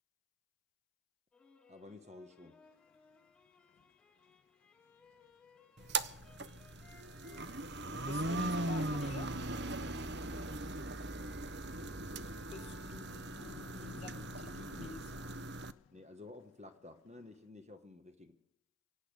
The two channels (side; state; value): both; normal; correlation 0.43